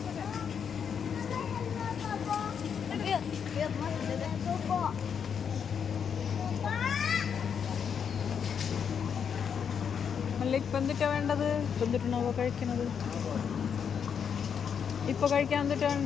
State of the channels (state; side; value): quieter; right; 7.3 dB